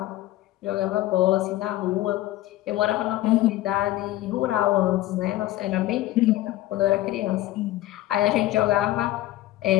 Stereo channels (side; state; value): right; quieter; 15.6 dB